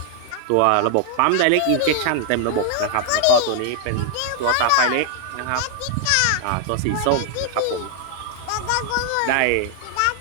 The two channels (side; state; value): both; different; correlation 0.00